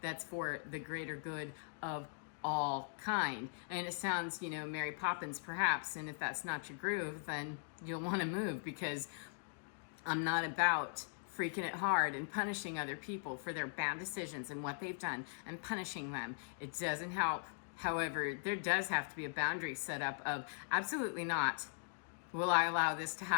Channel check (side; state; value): right; silent; digital silence